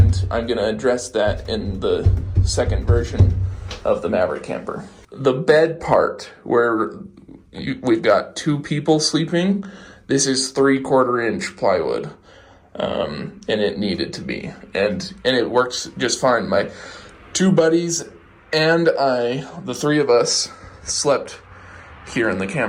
I'm going to address that in the second version of the Maverick Camper. The bed part, where we've got 2 people sleeping, this is 3/4 inch plywood, and it needed to be, and it works just fine. My 2 buddies and I, the 3 of us, slept here in the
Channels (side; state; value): both; identical; correlation 1.00